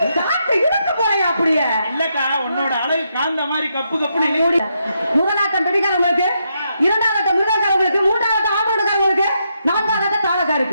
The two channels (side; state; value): both; inverted; correlation -0.80